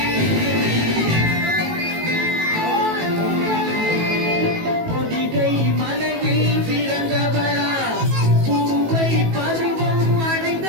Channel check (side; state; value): left; late; 18 ms